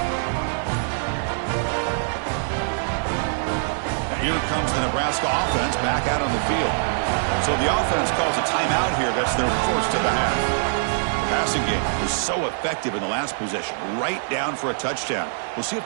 Here comes the Nebraska offense back out on the field. So the offense calls a timeout here. That's their first of the half. The passing game was so effective in the last possession, right down for a touchdown. We'll see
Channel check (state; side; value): silent; left; digital silence